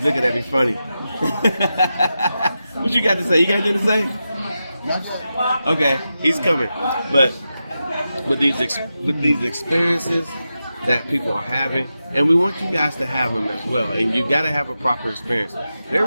looking at me funny. What you got to say? You got anything to say? Okay, he's coming. But with these experiences that people are having, and we want you guys to have them as well. And you got to have a proper experience.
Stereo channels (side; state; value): both; inverted; correlation -0.90